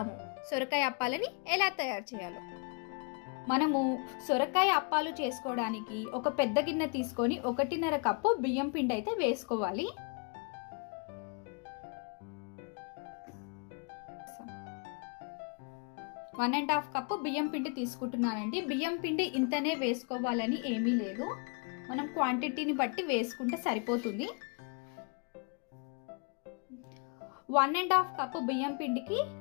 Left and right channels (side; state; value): right; quieter; 36.5 dB